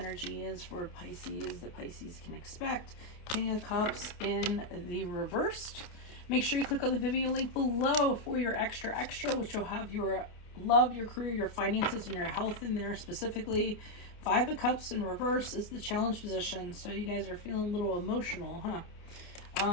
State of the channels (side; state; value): right; late; 28 ms